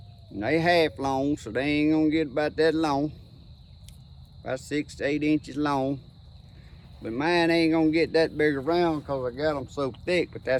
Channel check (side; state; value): both; identical; correlation 1.00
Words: And they half long, so they ain't gonna get about that long. About 6 to 8 inches long. But mine ain't gonna get that big around because I got them so thick, but